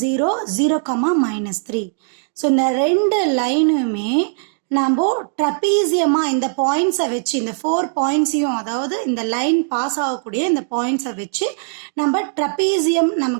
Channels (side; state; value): left; silent; digital silence